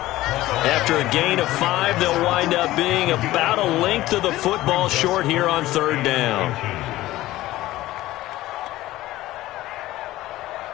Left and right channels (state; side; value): quieter; right; 16.4 dB